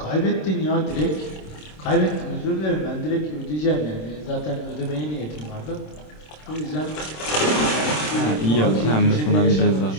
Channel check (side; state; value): right; late; 26 ms